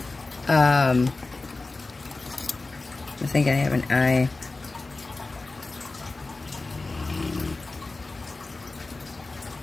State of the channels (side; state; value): right; quieter; 3.4 dB